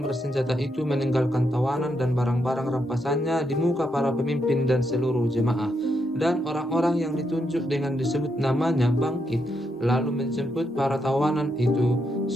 itu meninggalkan tawanan dan barang-barang rampasannya di muka para pemimpin dan seluruh jemaah. Dan orang-orang yang ditunjuk dengan disebut namanya bangkit, lalu menjemput para tawanan itu.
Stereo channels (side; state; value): both; normal; correlation 0.80